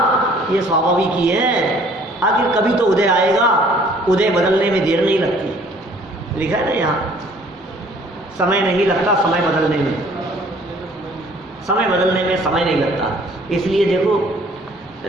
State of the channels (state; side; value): normal; both; correlation 0.57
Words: ये स्वाभाविक ही है। आखिर कभी तो उदय आएगा, उदय बदलने में देर नहीं लगती, लिखा है ना यहाँ, समय नहीं लगता समय बदलने में, समय बदलने में समय नहीं लगता। इसलिए देखो